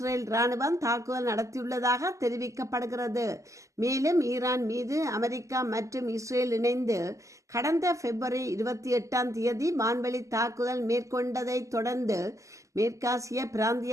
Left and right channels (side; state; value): left; late; 0.16 ms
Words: இராணுவம் தாக்குதல் நடத்தியுள்ளதாக தெரிவிக்கப்படுகிறது. மேலும் ஈரான் மீது அமெரிக்கா மற்றும் இஸ்ரேல் இணைந்து கடந்த பிப்ரவரி 28 வான்வெளி தாக்குதல் மேற்கொண்டதை தொடர்ந்து மேற்காசிய